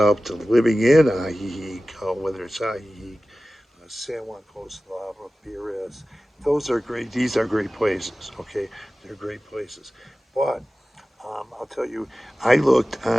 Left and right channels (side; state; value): both; normal; correlation 0.96